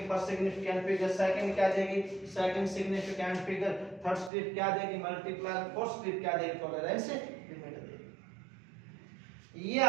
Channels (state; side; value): drops out; left; at 4.3 s